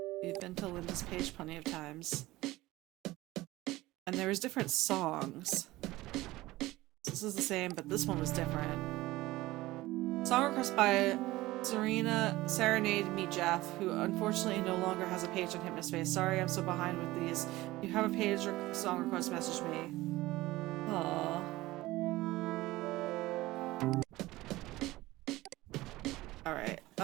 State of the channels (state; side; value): quieter; left; 18.3 dB